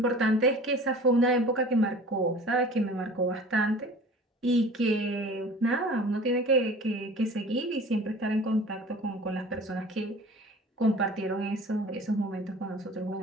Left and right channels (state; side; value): normal; both; correlation 0.43